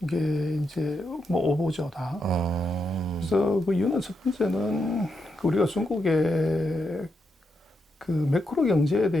이게 이제 뭐 오보죠 다. 그래서 그 이유는 첫 번째는 그 우리가 중국의 그 매크로 경제에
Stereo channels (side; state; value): both; normal; correlation 0.83